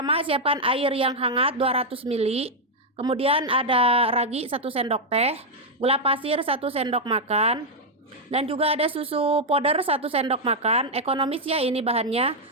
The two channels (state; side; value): normal; both; correlation 0.00